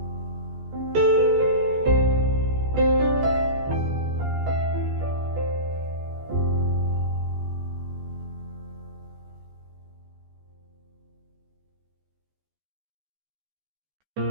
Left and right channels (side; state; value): left; late; 14 ms